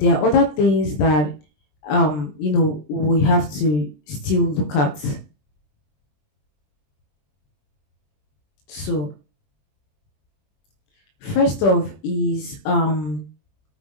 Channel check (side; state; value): right; late; 20 ms